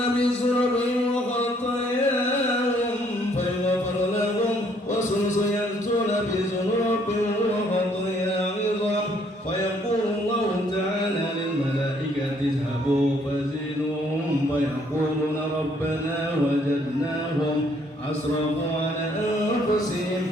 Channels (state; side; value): normal; both; correlation 0.66